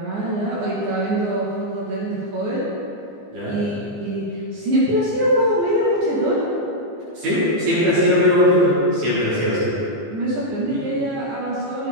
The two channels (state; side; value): late; left; 15 ms